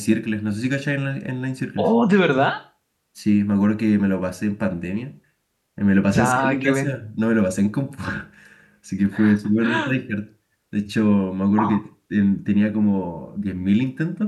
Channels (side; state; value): both; identical; correlation 1.00